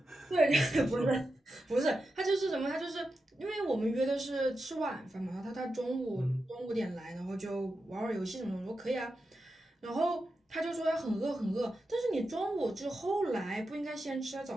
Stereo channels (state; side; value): normal; both; correlation 0.89